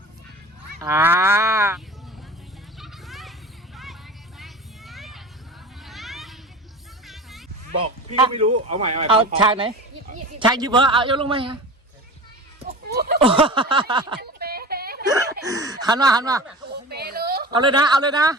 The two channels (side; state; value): both; normal; correlation 0.34